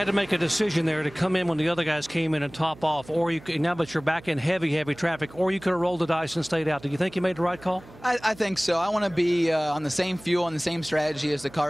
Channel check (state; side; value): noise; right; hum, 21 dB below the sound